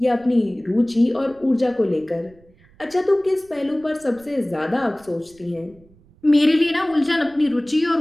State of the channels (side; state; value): right; noise; rumble, 28 dB below the sound